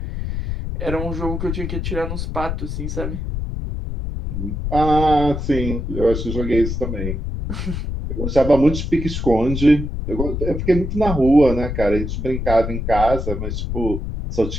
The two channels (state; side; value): noise; left; rumble, 4 dB below the sound